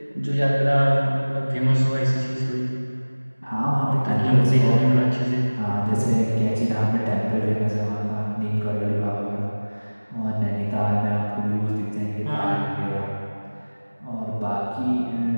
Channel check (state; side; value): inverted; both; correlation -1.00